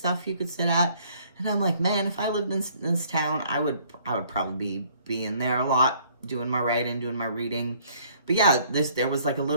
you could sit at. And I'm like, man, if I lived in this town, I would probably be in there a lot, doing my writing, doing my reading. But yeah, there was like a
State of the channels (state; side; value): inverted; both; correlation -0.61